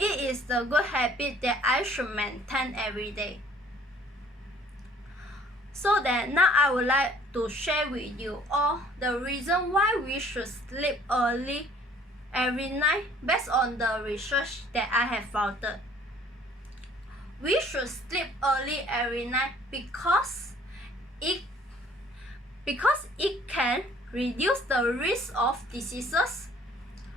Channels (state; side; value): normal; both; correlation 0.56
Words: is the good habit that I should maintain every day. So that now I would like to share with you all the reason why we should sleep early every night based on the research that I have found. We should sleep early every night because it can reduce the risk of diseases.